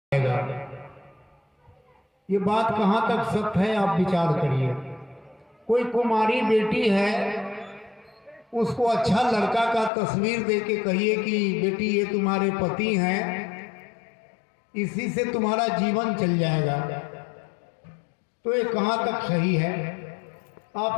हैं, ये बात कहाँ तक सत्य है आप विचार करिए। कोई कुमारी बेटी है, उसको अच्छा लड़का का तस्वीर दे के कहिए कि बेटी ये तुम्हारे पति हैं, इसी से तुम्हारा जीवन चल जाएगा, तो ये कहाँ तक सही है?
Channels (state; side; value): drops out; right; at 9.9 s